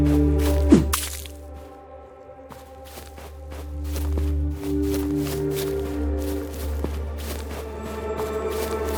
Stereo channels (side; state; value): both; identical; correlation 1.00